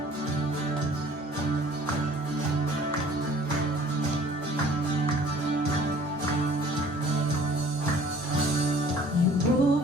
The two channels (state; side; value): normal; both; correlation 0.52